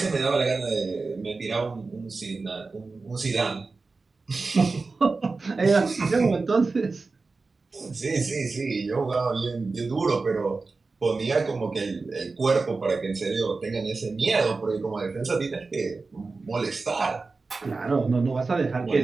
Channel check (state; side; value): quieter; left; 3.9 dB